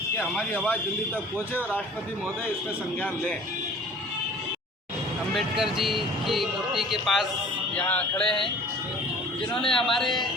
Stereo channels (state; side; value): normal; both; correlation 0.47